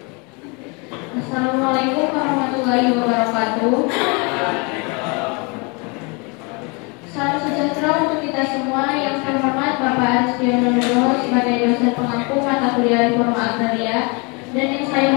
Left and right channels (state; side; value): quieter; right; 30.6 dB